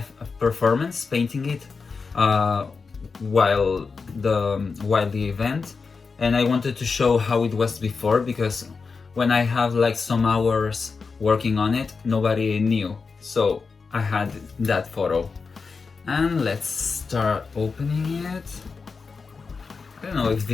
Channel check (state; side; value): quieter; right; 4.8 dB